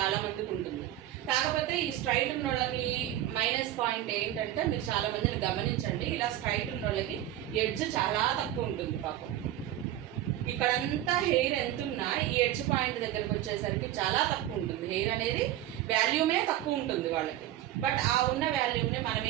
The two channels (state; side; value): quieter; left; 13.0 dB